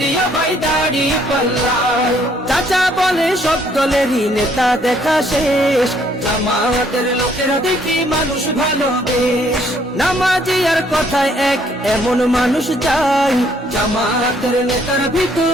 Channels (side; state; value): both; normal; correlation 0.66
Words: ভাই দাড়ি পাল্লায়। চাচা বলে সব দলেরই নেতা দেখা শেষ, জামাতের লোকেরা দেখি মানুষ ভালো বেশ। নামাজি আর কথায় এক এমন মানুষ চাই, জামাতের নেতার